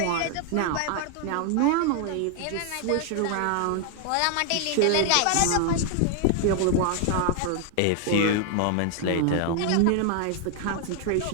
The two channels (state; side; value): different; both; correlation 0.00